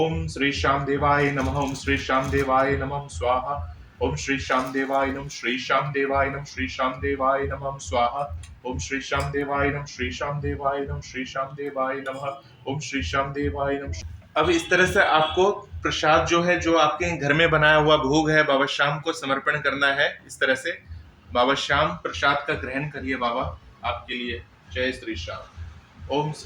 श्री श्याम देवाय नमः, ओम श्री श्याम देवाय नमः स्वाहा, ओम श्री श्याम देवाय नमः, श्री श्याम देवाय नमः, श्री श्याम देवाय नमः स्वाहा, ओम श्री श्याम देवाय नमः, श्री श्याम देवाय नमः, श्री श्याम देवाय नमः, ओम श्री श्याम देवाय नमः। अब इस तरह से आपको प्रसाद जो है, जो आपके घर में बनाया हुआ भोग है, बाबा श्याम को समर्पण करना है। इस तरह से बाबा श्याम प्रसाद का ग्रहण करिए बाबा आपके लिए। जय श्री श्याम। ओम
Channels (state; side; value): identical; both; correlation 1.00